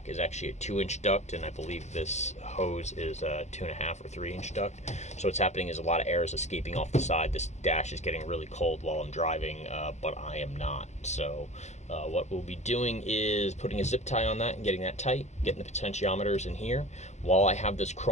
is actually a 2-inch duct, and I believe this hose is a 2.5 or 3-inch duct. So what's happening is a lot of air is escaping off the side. This dash is getting really cold while I'm driving, but I am not. So what we'll be doing is putting a zip tie on that and getting that tight, getting the potentiometers in here. While I have this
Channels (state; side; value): late; right; 0.33 ms